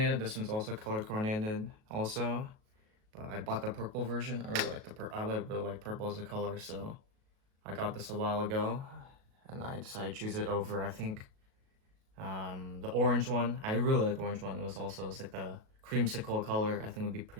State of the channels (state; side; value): late; left; 37 ms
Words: This one's also color coordinated also, but I bought the purple version. I really like really like purple as a color, so I got this a while ago and I decided to choose it over, I think, the orange one. I really like the orange one. It's like the creamsicle color. I think would be